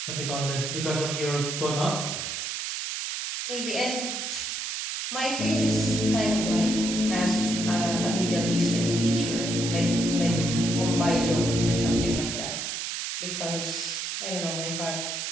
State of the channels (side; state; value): right; noise; hiss, 3 dB below the sound